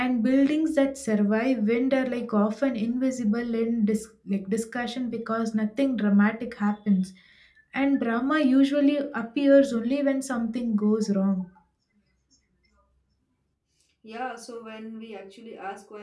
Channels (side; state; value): both; identical; correlation 1.00